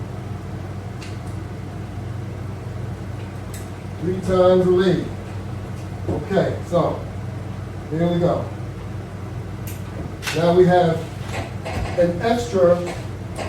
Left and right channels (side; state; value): both; identical; correlation 1.00